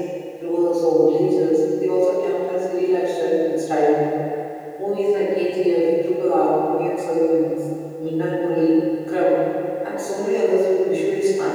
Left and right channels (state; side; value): identical; both; correlation 1.00